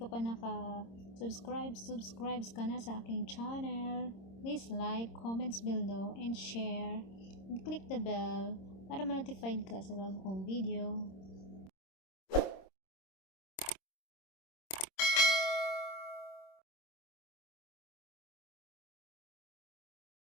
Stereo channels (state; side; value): late; right; 26 ms